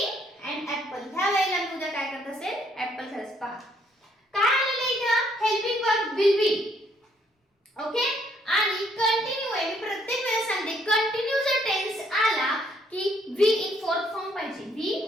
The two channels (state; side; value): normal; both; correlation 0.68